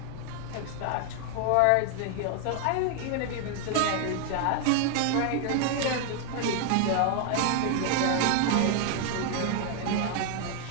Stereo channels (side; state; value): both; different; correlation 0.00